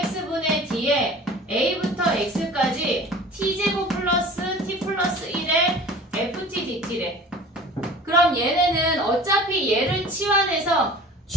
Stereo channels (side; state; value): both; normal; correlation 0.42